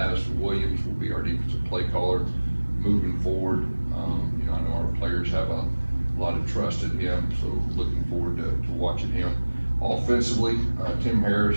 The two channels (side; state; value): both; inverted; correlation -1.00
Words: Williams will be our defensive play caller moving forward. I know our players have a lot of trust in him, so looking forward to watching him. Offensively, Tim